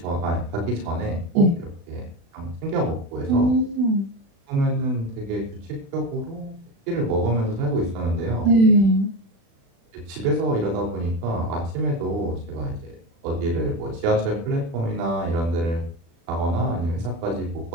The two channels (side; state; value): left; late; 36 ms